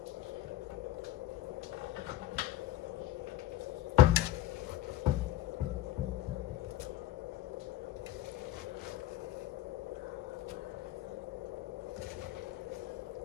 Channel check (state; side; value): quieter; right; 14.1 dB